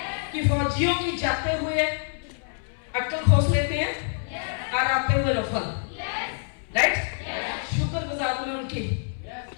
कि फौजियों की जाते हुए अक्ल खोस लेते हैं और आते हुए रफल। राइट? शुक्रगुजार हूं उनकी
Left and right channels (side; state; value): right; silent; 61 dB below the other